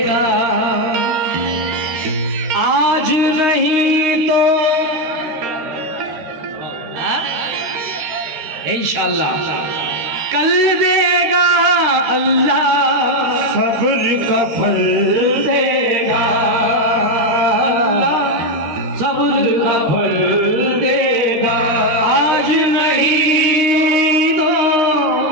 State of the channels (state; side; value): late; left; 13 ms